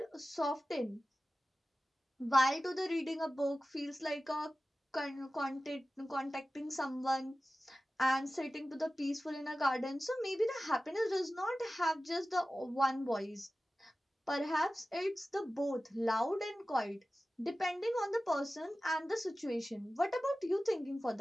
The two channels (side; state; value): both; normal; correlation 0.95